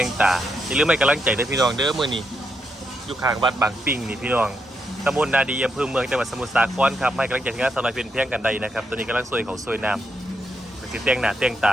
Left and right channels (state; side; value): normal; both; correlation 0.81